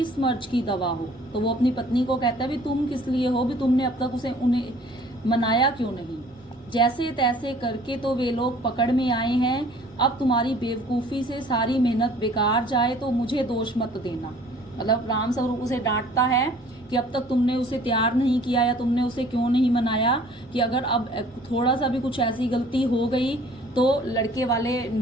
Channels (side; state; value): both; normal; correlation 0.53